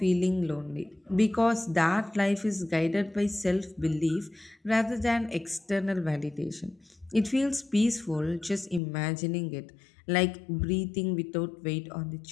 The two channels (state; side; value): drops out; right; at 8.8 s